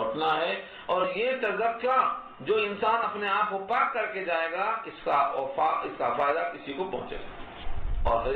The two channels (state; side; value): identical; both; correlation 1.00